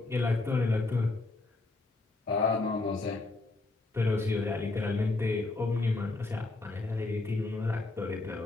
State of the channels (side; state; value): right; quieter; 3.2 dB